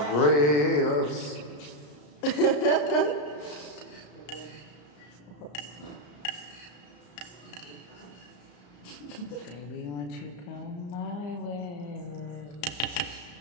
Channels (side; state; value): right; late; 33 ms